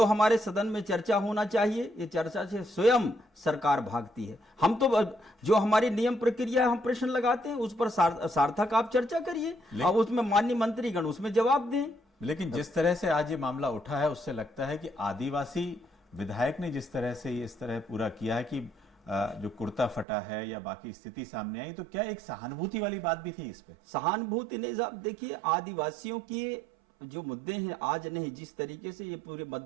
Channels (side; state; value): left; drops out; at 20.1 s